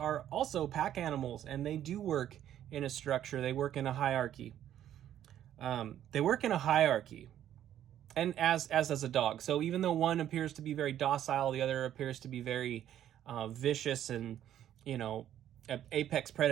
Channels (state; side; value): quieter; left; 11.2 dB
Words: also pack animals, and they do work in a structure. They work in a hierarchy. And as does a dog. So even though one appears to be very docile, the other appears to be very vicious and, an apex